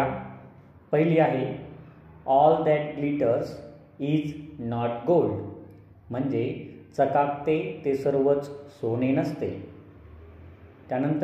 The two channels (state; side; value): identical; both; correlation 1.00